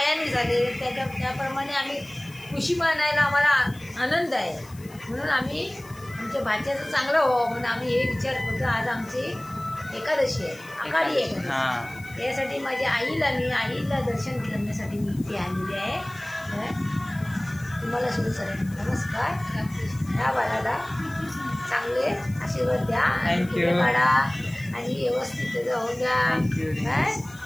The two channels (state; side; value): noise; left; hiss, 23 dB below the sound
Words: झाले. त्याप्रमाणे आम्ही खुशी मानायला आम्हाला आनंद आहे. म्हणून आम्ही आमच्या भाच्याचं चांगलं व्हावं म्हणून आम्ही हे विचार करतो. आज आमची एकादशी आहे. आषाढी एकादशी. यासाठी माझ्या आईला दर्शन करण्यासाठी मी इथे आलेली आहे. तुम्हाला सुरू सर नमस्कार. ह्या बाळाला चांगले आशीर्वाद द्या. काढा आणि व्यवस्थित होऊन द्या.